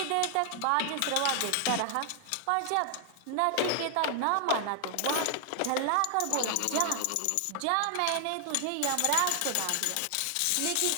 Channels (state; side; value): different; both; correlation 0.00